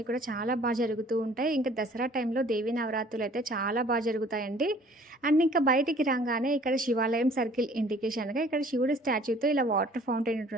కూడా చాలా జరుగుతూ ఉంటాయి. ఇంకా దసరా టైంలో దేవీ నవరాత్రులు అయితే చాలా జరుగుతాయండి. అండ్ ఇంకా బయటికి రాగానే ఇక్కడ శివాలయం సర్కిల్ ఇండికేషన్గా ఇక్కడ శివుడి స్టాచ్యూతో ఇలా వాటర్ ఫౌంటైన్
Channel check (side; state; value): both; normal; correlation 0.54